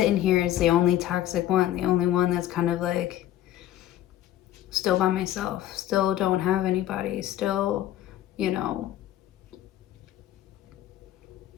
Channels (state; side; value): quieter; right; 12.8 dB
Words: here as the only toxic one, the only one that's kind of like still by myself, still don't have anybody, still, you know.